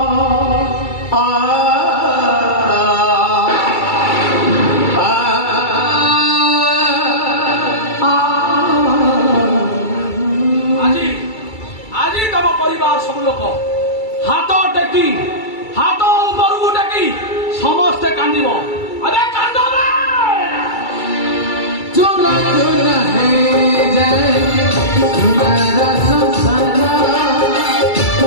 ସବୁ ଲୋକ ହାତ ଟେକି ହାତ ଉପରକୁ ଟେକି ସମସ୍ତେ କାନ୍ଦିବ ଆରେ କାନ୍ଦ ଚୁନା ଚୁନା ହେଇଯାଏ ଚୁନାର ସଂସାର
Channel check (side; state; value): right; late; 2.3 ms